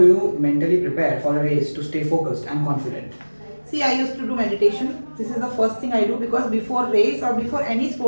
you mentally prepare for a race to stay focused and confident? See, I used to do meditation. This is the first thing I do because before race or before any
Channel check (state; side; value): inverted; both; correlation -1.00